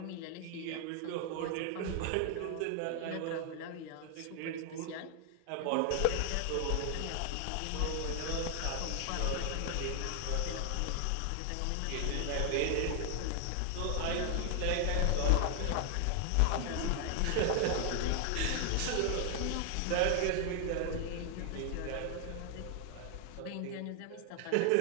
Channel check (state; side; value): different; both; correlation 0.00